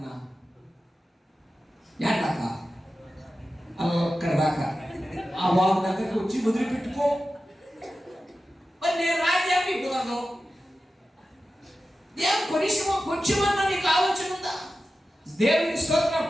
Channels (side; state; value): both; normal; correlation 0.93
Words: దాకా అక్కడ దాకా ఆ బాబు దగ్గరికి వచ్చి వదిలిపెట్టుకో. మరి నేను రాజ్యాన్ని కుదరదు. కొంచెమన్నా నీకు ఆలోచన ఉందా? దేవుని స్తోత్రం.